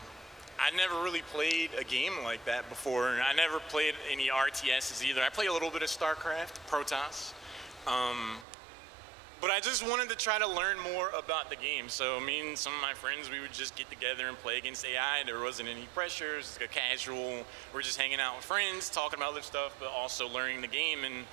I never really played a game like that before. I never played any RTSs either. I played a little bit of StarCraft, Protoss. But I just wanted to try to learn more about the game. So me and some of my friends, we would just get together and play against AI. There wasn't any pressure. It was a casual, we're just hanging out with friends, talking about other stuff, but also learning the game. And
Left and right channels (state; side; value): drops out; left; at 8.5 s